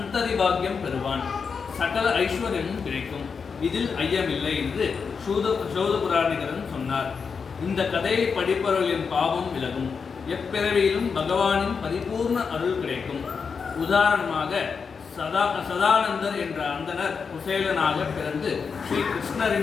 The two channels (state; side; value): quieter; right; 5.7 dB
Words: பாக்கியம் பெறுவான். சகல ஐஸ்வர்யமும் கிடைக்கும். இதில் ஐயமில்லை என்று சூதபுராணிகரன் சொன்னார். இந்த கதையை படிப்பவர்களின் பாவம் விலகும். எப்பிறவியிலும் பகவானின் பரிபூர்ண அருள் கிடைக்கும். உதாரணமாக சதானந்தர் என்ற அந்தனர் குசேலனாக பிறந்து ஸ்ரீ